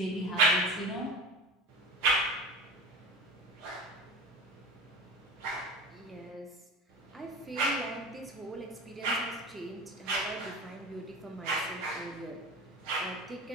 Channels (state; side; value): normal; both; correlation 0.31